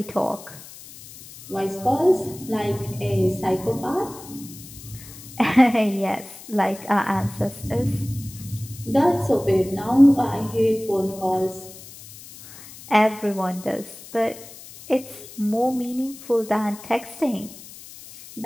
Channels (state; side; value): noise; left; hiss, 17 dB below the sound